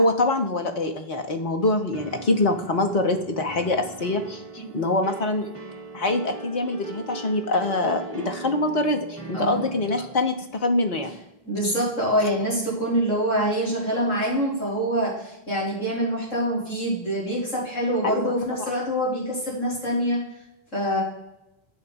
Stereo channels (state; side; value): late; right; 4.3 ms